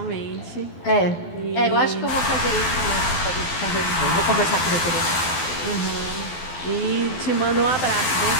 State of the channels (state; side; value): late; right; 12 ms